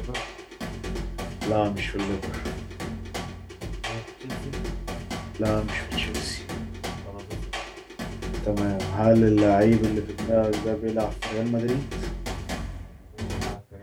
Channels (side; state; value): both; identical; correlation 1.00